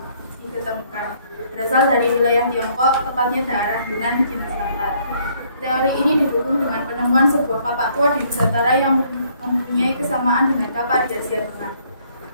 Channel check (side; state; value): both; inverted; correlation -0.65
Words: Berasal dari wilayah Tiongkok, tepatnya daerah Yunan, Cina Selatan. Teori ini didukung dengan penemuan sebuah kapak tua di Nusantara yang mempunyai kesamaan dengan kapak di Asia Tengah.